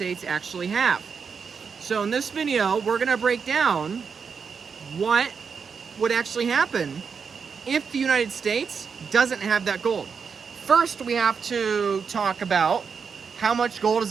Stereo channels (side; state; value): left; quieter; 6.0 dB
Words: actually have. So in this video, we're going to break down what would actually happen if the United States doesn't have that gold. First, we have to talk about how much gold